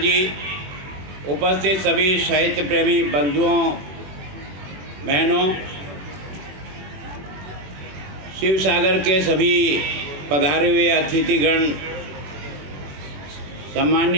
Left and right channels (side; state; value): left; late; 21 ms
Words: उपस्थित सभी साहित्य प्रेमी बंधुओं बहनों, शिवसागर के सभी पधारे हुए अतिथिगण,